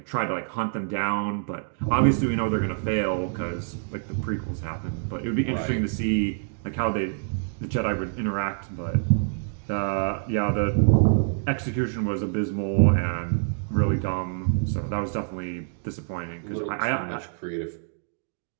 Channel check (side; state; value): left; silent; digital silence